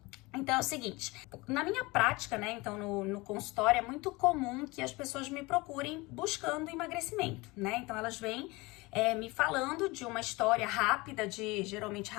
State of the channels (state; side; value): quieter; right; 23.3 dB